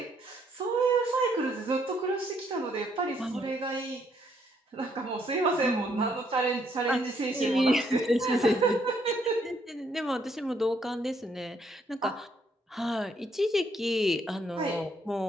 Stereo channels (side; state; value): both; normal; correlation 0.70